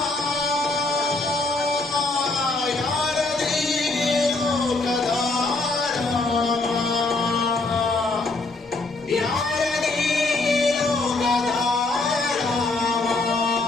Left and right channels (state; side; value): quieter; right; 3.3 dB